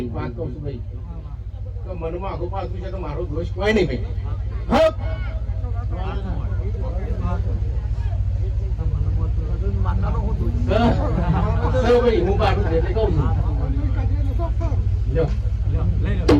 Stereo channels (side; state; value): both; identical; correlation 1.00